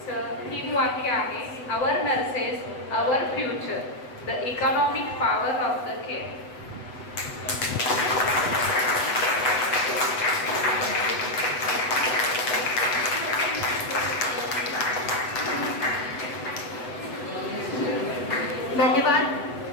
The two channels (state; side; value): late; right; 8.0 ms